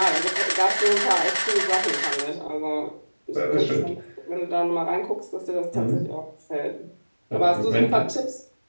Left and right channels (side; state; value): both; inverted; correlation -1.00